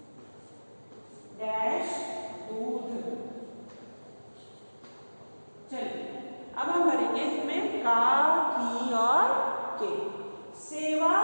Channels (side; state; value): both; inverted; correlation -1.00